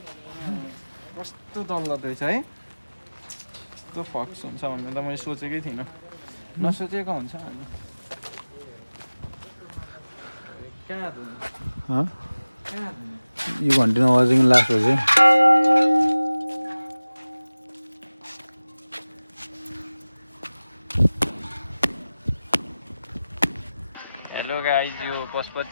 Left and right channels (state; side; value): inverted; both; correlation -0.97